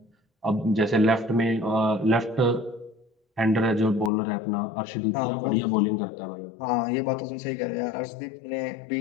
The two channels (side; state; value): right; drops out; at 4.1 s